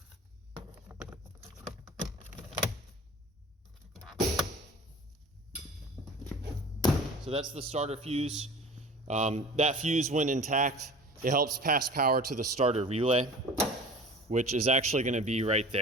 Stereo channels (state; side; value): normal; both; correlation 0.40